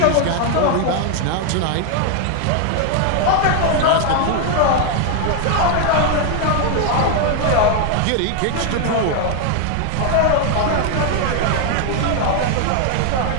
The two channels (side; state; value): both; different; correlation 0.00